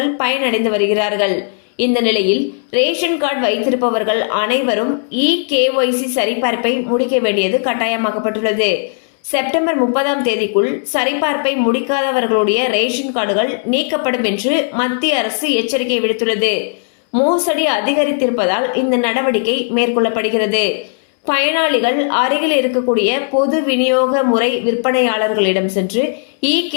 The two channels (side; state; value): right; silent; 69 dB below the other